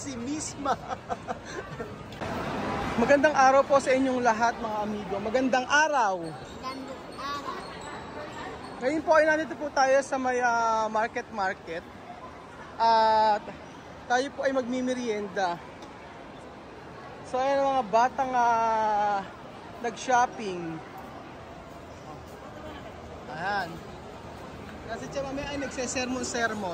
Misma. Magandang araw po sa inyong lahat mga amigo. Magandang araw. Ngayon po ay nandito po tayo sa may market. At tayo po ay magmimerienda. So ayan mga batang nag-shopping. Ayan. Kasi siya mamaya ay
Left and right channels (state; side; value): identical; both; correlation 1.00